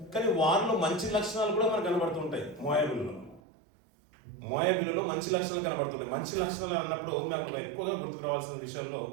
కానీ వారిలో మంచి లక్షణాలు కూడా మనకు కనబడుతుంటాయి. మోయాబీలలో మంచి లక్షణాలు కనబడుతుంటాయి. మంచి లక్షణాలు అన్నప్పుడు నాకు ఎక్కువగా గుర్తుకు రావాల్సిన విషయంలో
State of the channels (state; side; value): drops out; left; at 3.4 s